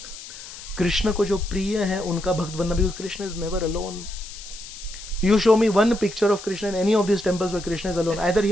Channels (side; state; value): left; noise; hiss, 14 dB below the sound